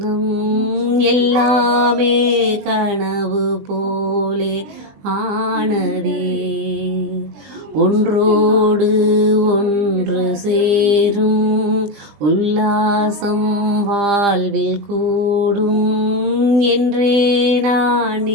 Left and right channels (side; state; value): left; late; 20 ms